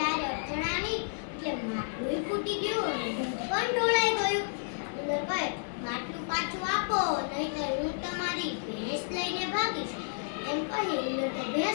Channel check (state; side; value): silent; right; digital silence